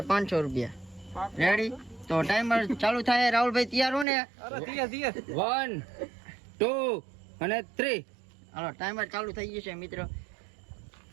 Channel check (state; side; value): drops out; left; at 4.0 s